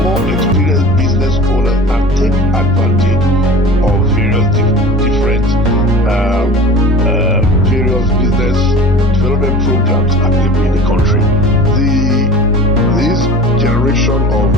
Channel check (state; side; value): normal; both; correlation 0.38